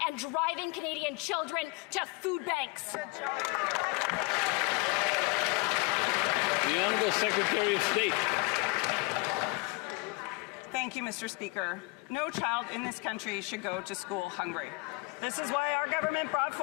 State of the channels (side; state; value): right; quieter; 26.0 dB